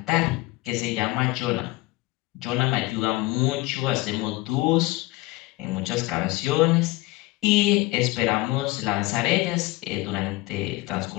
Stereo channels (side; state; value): right; quieter; 20.4 dB